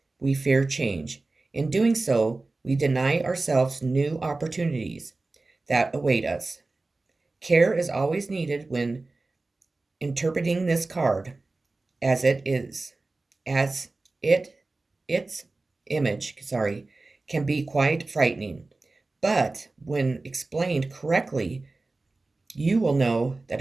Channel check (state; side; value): quieter; left; 3.3 dB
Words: we fear change. In doing so, we deny ourselves new opportunities that await us. Care is always needed when interpreting this card, as it is, as its image, can be quite frightening. But when explained correctly, you will know that